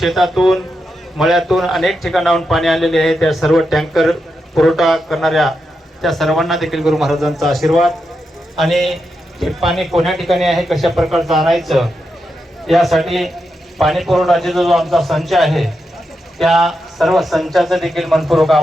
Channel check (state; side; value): normal; both; correlation 0.86